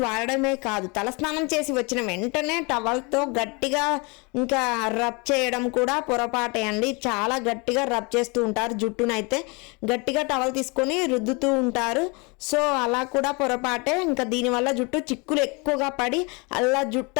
వాడడమే కాదు, తలస్నానం చేసి వచ్చిన వెంటనే టవల్తో గట్టిగా ఇంకా రబ్ చేయడం కూడా పొరపాటే అండి. చాలా గట్టిగా రబ్ చేస్తూ ఉంటారు జుట్టునైతే. గట్టిగా టవల్ తీసుకొని రుద్దుతూ ఉంటారు. సో అలా కూడా పొరపాటే. ఇంకా దీనివల్ల జుట్టు చిక్కులు ఎక్కువగా పడి అలా జుట్టు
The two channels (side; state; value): right; quieter; 29.4 dB